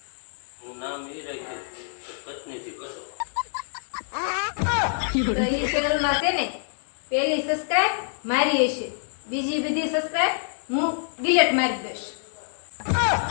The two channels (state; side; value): silent; right; digital silence